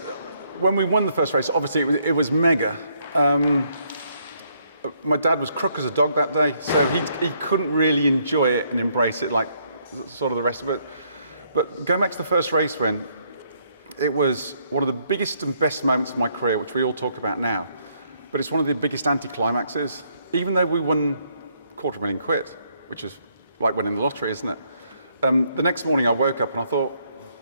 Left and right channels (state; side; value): inverted; both; correlation -0.71